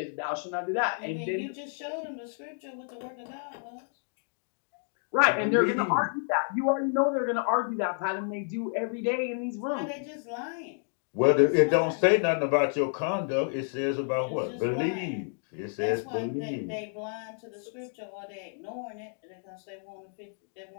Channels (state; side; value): silent; right; 58 dB below the other